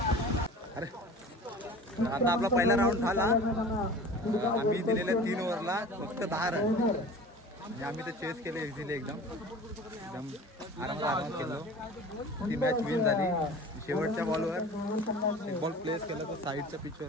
अरे आता आपला पहिला राऊंड झाला आम्ही दिलेल्या 3 ओव्हरला फक्त 10 रन म्हणजे आम्ही ते चेस केले इझिली एकदम आरामात केलो ती मॅच विन झाली शेवटच्या बॉलवर एक बॉल प्लेस केला तर साईडच्या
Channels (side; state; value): both; normal; correlation 0.40